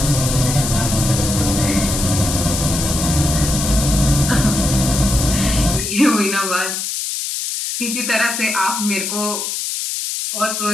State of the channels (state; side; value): noise; left; hiss, 3 dB below the sound